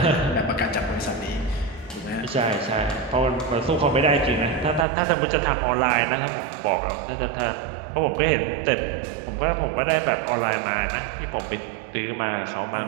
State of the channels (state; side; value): drops out; left; at 4.9 s